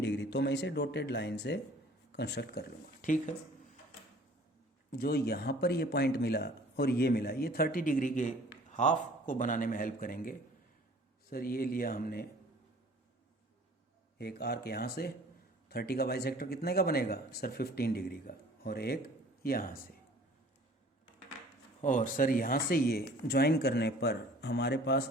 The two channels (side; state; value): both; normal; correlation 0.50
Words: डिग्री, तो मैं इसे डॉटेड लाइन से कंस्ट्रक्ट कर लूँगा। ठीक है, जो यहाँ पर ये पॉइंट मिला और ये मिला, ये 30 डिग्री के हाफ को बनाने में हेल्प करेंगे। सर ये लिया हमने एक आर्क यहाँ से 30 का बाइसेक्टर कितने का बनेगा सर 15 डिग्री का, और एक यहाँ से, और सर यहाँ से ये ज्वाइन करने पर हमारे